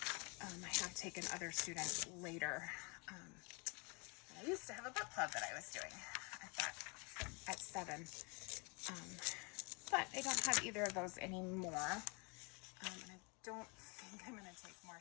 taken other students later. I used to have a book club that I was doing at 7. But I don't have either of those anymore. And I don't think I'm going to take more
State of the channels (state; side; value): quieter; right; 32.0 dB